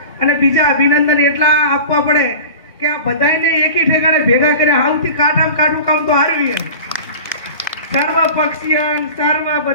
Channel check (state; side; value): inverted; both; correlation -0.36